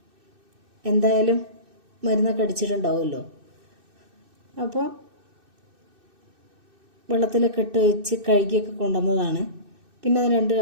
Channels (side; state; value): left; late; 2.6 ms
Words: എന്തായാലും മരുന്നൊക്കെ അടിച്ചിട്ടുണ്ടാവുമല്ലോ. അപ്പോൾ വെള്ളത്തിലൊക്കെ ഇട്ട് വെച്ച് കഴുകിയൊക്കെ കൊണ്ടുവന്നതാണ്. പിന്നെ അത് 2